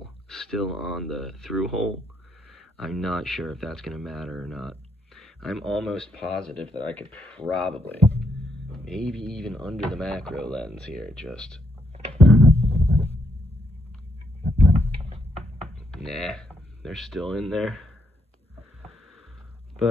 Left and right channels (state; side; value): normal; both; correlation 0.76